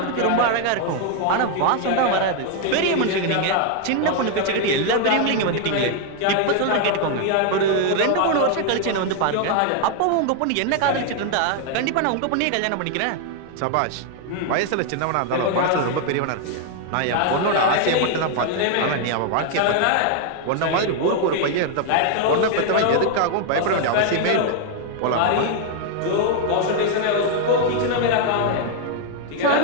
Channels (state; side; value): different; both; correlation 0.00